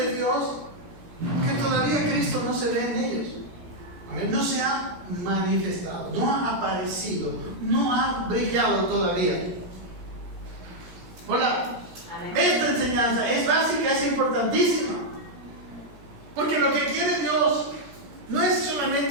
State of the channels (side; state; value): left; late; 17 ms